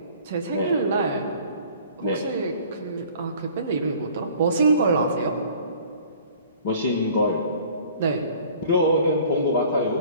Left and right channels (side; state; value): both; inverted; correlation -0.50